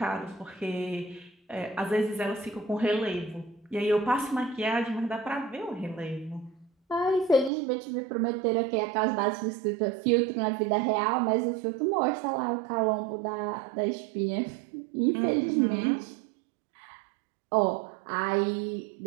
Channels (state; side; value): drops out; left; at 7.5 s